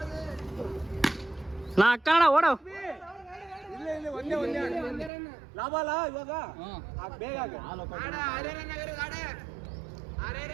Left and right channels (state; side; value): drops out; left; at 5.1 s